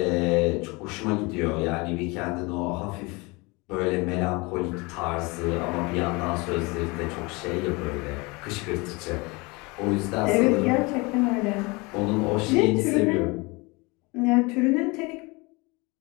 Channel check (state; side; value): quieter; right; 26.2 dB